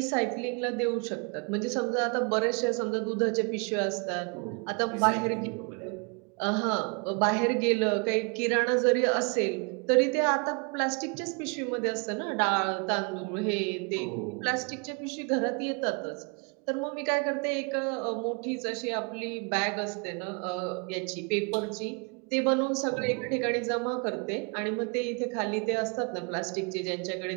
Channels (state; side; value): quieter; left; 34.7 dB